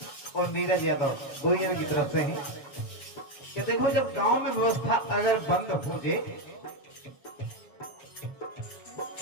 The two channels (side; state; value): right; late; 7.1 ms